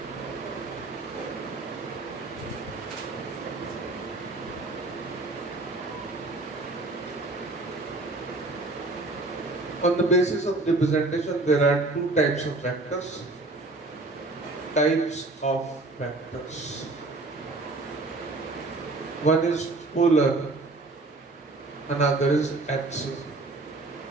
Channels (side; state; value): left; quieter; 3.1 dB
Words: on the basis of representation, there are two types of vectors. Types of vectors. One is polar, another is axial.